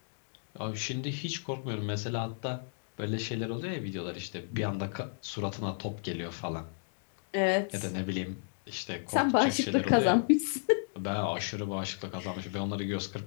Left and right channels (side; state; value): right; silent; digital silence